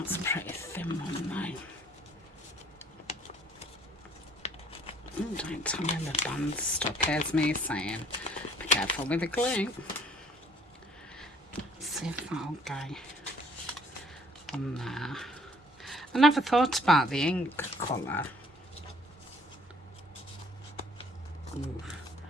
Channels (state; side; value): normal; both; correlation 0.58